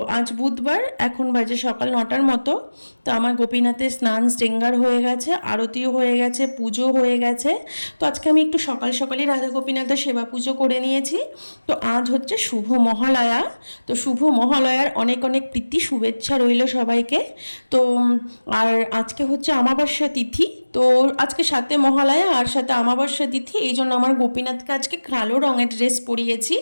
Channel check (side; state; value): both; inverted; correlation -1.00